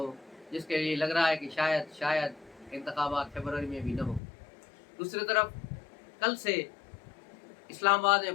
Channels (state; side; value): drops out; right; at 4.2 s